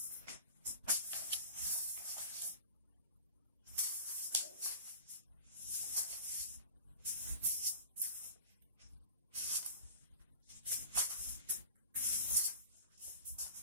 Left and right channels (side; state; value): both; inverted; correlation -0.40